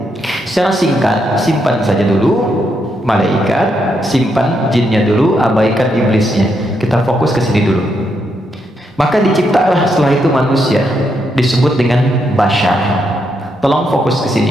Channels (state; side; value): normal; both; correlation 0.79